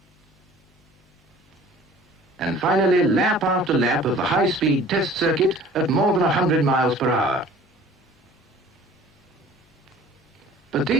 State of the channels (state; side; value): normal; both; correlation 0.48